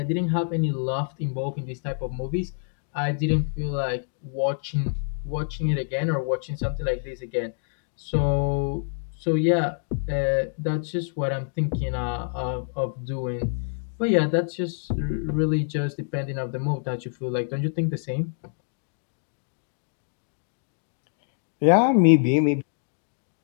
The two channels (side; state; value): right; silent; digital silence